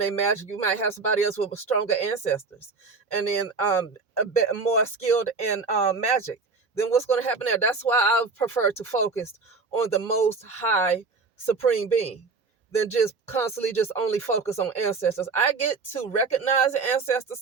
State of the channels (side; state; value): left; quieter; 4.3 dB